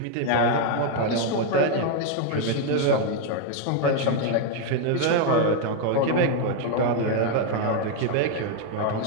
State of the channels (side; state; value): both; different; correlation 0.01